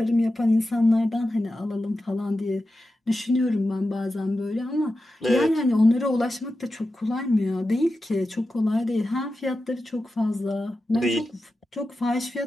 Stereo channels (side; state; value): both; normal; correlation 0.92